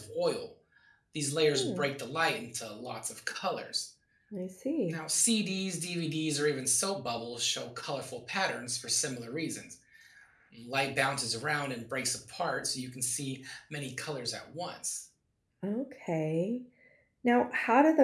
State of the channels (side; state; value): both; identical; correlation 1.00